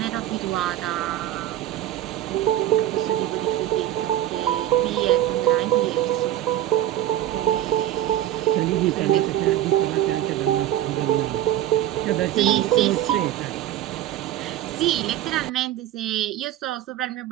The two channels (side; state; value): left; quieter; 13.0 dB